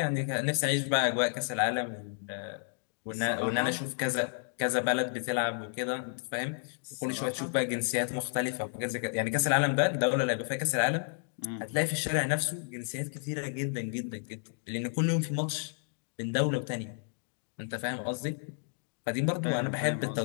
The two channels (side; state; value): right; silent; 57 dB below the other